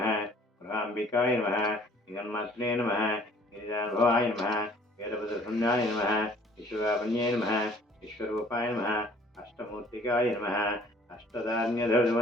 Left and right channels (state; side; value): normal; both; correlation 0.55